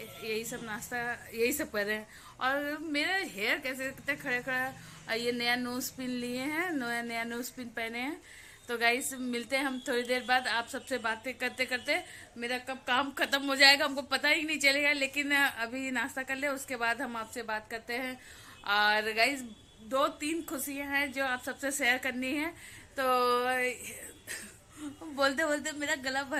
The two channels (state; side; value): identical; both; correlation 1.00